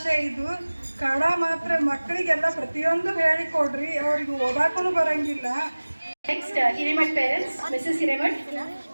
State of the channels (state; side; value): inverted; both; correlation -1.00